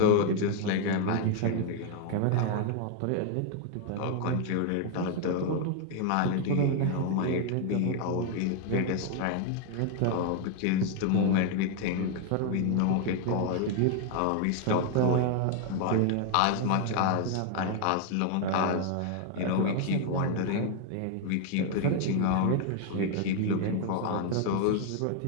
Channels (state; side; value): different; both; correlation 0.00